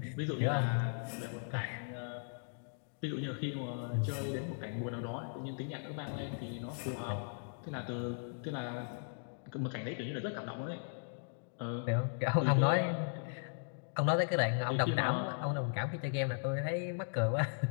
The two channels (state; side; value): silent; right; digital silence